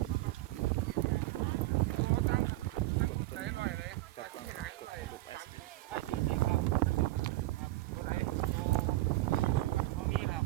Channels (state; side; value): quieter; left; 18.0 dB